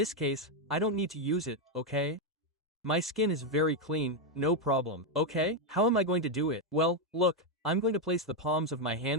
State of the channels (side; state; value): both; normal; correlation 0.03